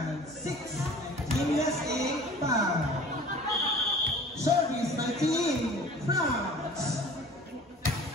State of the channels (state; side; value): normal; both; correlation 0.45